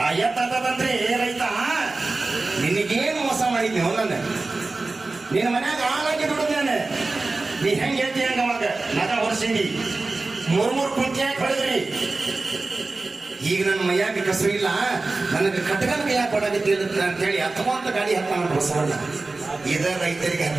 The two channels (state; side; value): quieter; left; 3.4 dB